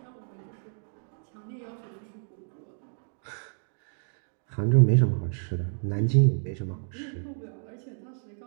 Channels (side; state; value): left; silent; digital silence